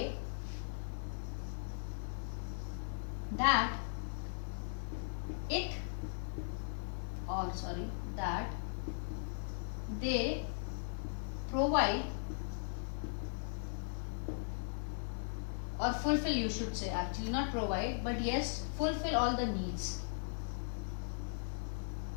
that that they provide or fulfill, you should say, actually not provide, but yes, fulfill all the needs.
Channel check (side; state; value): right; silent; 52 dB below the other